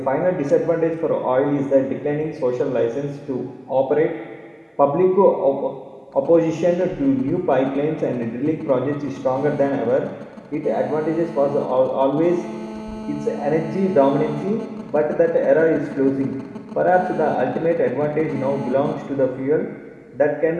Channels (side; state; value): both; identical; correlation 1.00